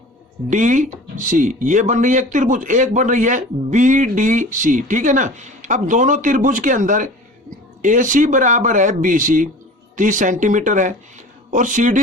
ये बन रही है एक त्रिभुज, एक बन रही है बी डी सी, ठीक है ना। अब दोनों त्रिभुज के अंदर ए सी बराबर है बी सी 30 सेंटीमीटर है, और सी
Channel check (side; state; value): both; normal; correlation 0.40